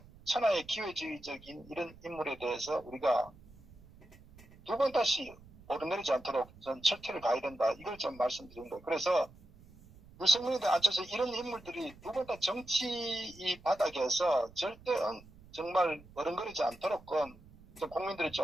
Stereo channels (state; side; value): noise; right; rumble, 22 dB below the sound